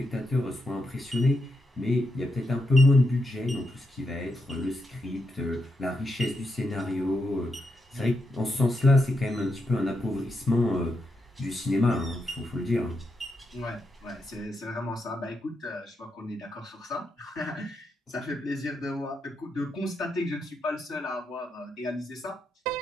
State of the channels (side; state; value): both; normal; correlation 0.84